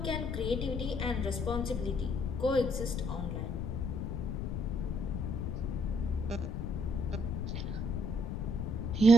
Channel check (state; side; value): noise; left; rumble, 2 dB below the sound